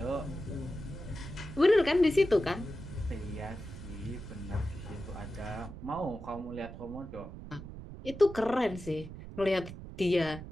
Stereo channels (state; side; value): noise; right; rumble, 12 dB below the sound